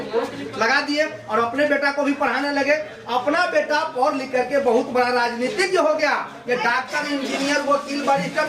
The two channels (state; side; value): identical; both; correlation 1.00